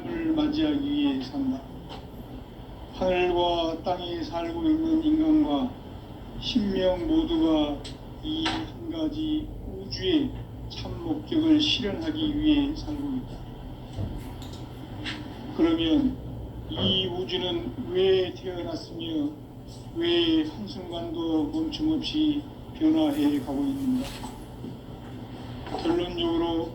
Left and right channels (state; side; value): identical; both; correlation 1.00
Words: 맞이하기 위해 산다. 하늘과 땅에 살고 있는 인간과 신명 모두가 이 한 가지 우주의 참 목적을 실현하기 위해 살고 있다. 그러면 이 우주는 왜 태어났으며 왜 한순간도 멈춤없이 변화해 가고 있는가? 결론적으로